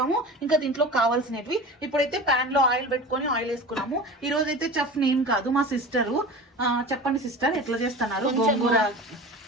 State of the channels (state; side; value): normal; both; correlation 0.34